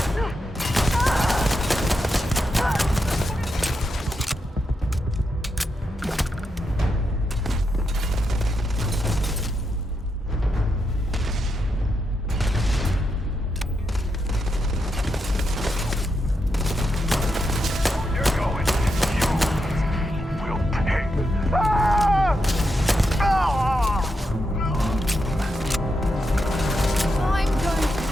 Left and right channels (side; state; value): both; normal; correlation 0.84